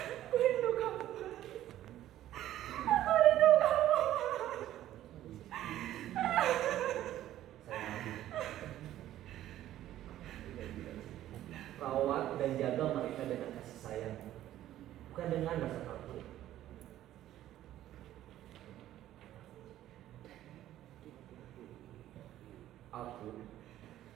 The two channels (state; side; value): quieter; left; 13.1 dB